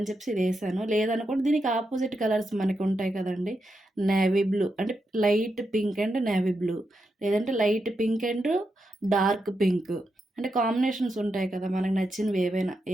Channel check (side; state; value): both; normal; correlation 0.85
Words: చెప్పేసి ఇదేశాను. లేదనుకోండి దీనికి అపోజిట్ కలర్స్ మనకుంటాయి కదండీ! నేవీ బ్లూ అంటే light pink and navy blue. లేదంటే light pink and dark pink. అంటే కాంబినేషన్స్ ఉంటాయి కదా! మనకు నచ్చినవి